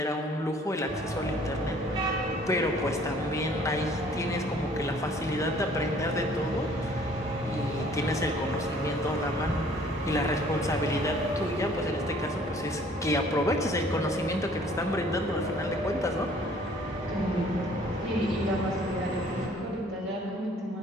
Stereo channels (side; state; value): both; normal; correlation 0.56